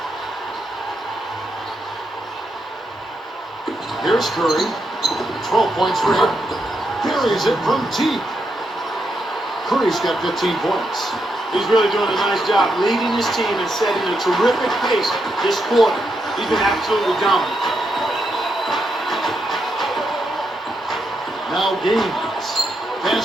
Here's Curry. 12 points for him. Carries it from deep. Curry's got 15 points. He's really doing a nice job leading his team and setting a terrific pace this quarter. He's been absolutely dominant. Now Gaines.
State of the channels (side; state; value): both; normal; correlation 0.82